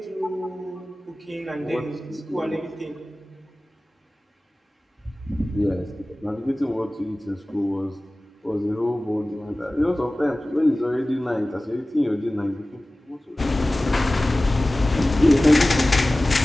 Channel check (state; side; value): normal; both; correlation 0.97